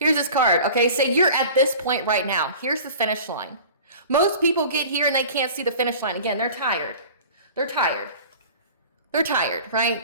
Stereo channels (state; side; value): inverted; both; correlation -0.41